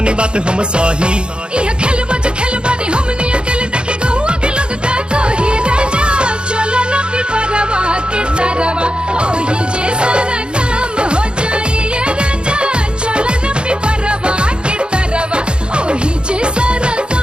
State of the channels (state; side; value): late; left; 0.053 ms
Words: बात हम सही। इह खेलबो जो खेलबानी हमनी अकेले देखे गहुआ के लोग का कही। राजा चलो ना पिपरवा के तरवा ओही जे सारा काम हो जाई। ए राजा चलो ना पिपरवा के तरवा ओही जे सारा